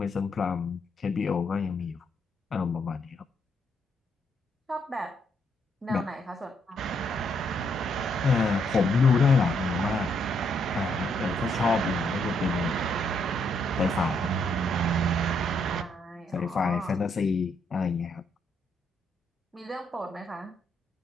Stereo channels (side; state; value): both; normal; correlation 0.74